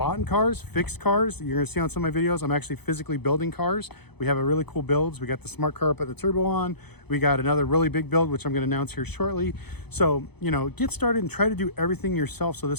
in cars, fixed cars. You're gonna see on some of my videos, I'm actually physically building cars. We have a really cool builds. We got the smart car up at the turbo on. We got another really big build, which I'm gonna announce here shortly. So, you know, get started and try to do everything yourself so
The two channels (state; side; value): late; right; 0.98 ms